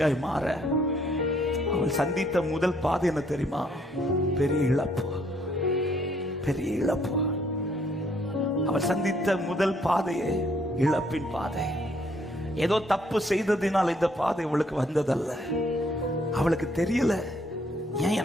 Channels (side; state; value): both; normal; correlation 0.67